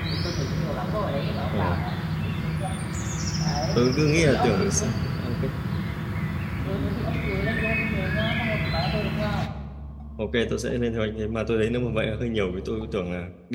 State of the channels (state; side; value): identical; both; correlation 1.00